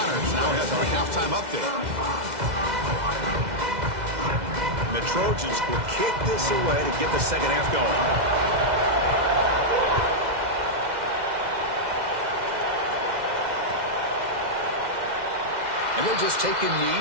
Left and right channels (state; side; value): late; left; 2.0 ms